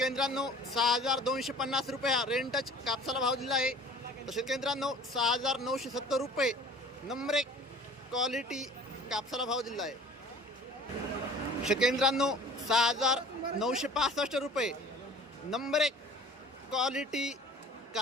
मित्रांनो, 6,250 रुपये हा रेंटच कापसाला भाव दिला आहे। तर शेतकरी मित्रांनो, 6,970 रुपये नंबर 1 क्वालिटी कापसाला भाव दिला आहे। शेतकरी मित्रांनो, 6,965 रुपये नंबर 1 क्वालिटी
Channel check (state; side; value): normal; both; correlation 0.46